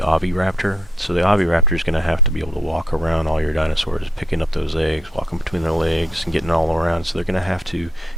Oviraptor. So the Oviraptor is going to have to be able to walk around all your dinosaurs, picking up those eggs, walking between their legs, and getting all around. So they're going to have to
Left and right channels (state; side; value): normal; both; correlation 0.69